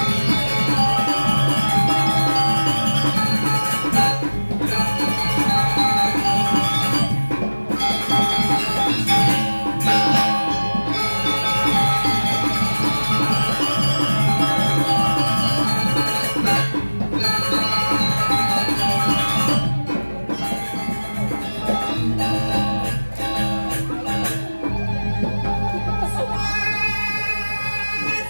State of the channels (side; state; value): both; inverted; correlation -1.00